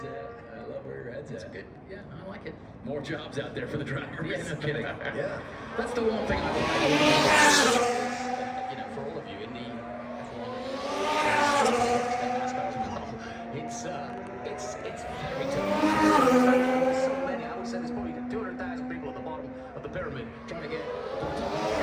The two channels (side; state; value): both; identical; correlation 1.00